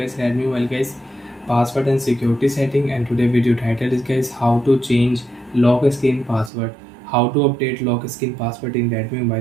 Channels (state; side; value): drops out; left; at 6.5 s